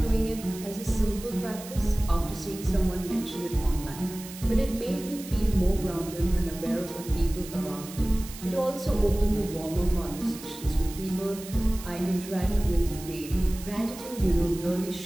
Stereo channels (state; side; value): noise; right; hiss, 14 dB below the sound